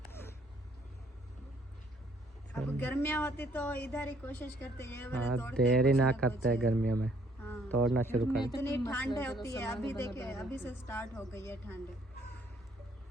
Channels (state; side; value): normal; both; correlation 0.65